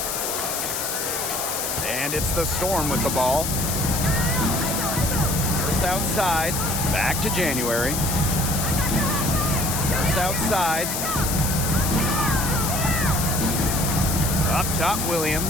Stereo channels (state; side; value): noise; left; hiss, 2 dB below the sound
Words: And it's the Storm with the ball. First outside, back to January. First outside. Up top,